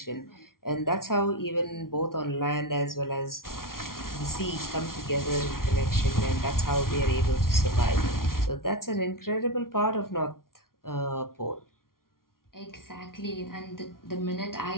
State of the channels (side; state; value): right; late; 0.92 ms